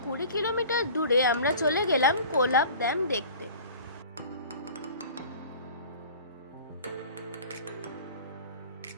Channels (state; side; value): inverted; both; correlation -0.43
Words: 20 কিলোমিটার দূরে আমরা চলে গেলাম কোলাব ড্যাম দেখতে।